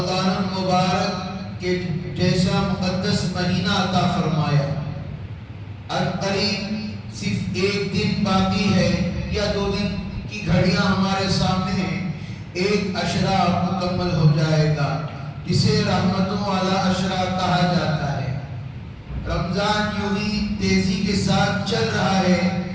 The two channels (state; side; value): identical; both; correlation 1.00